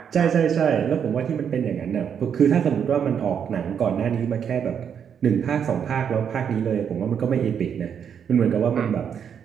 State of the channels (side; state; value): left; quieter; 7.9 dB